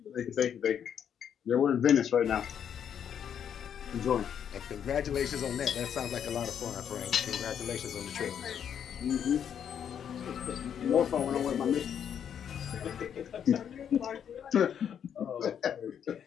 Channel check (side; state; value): right; quieter; 8.6 dB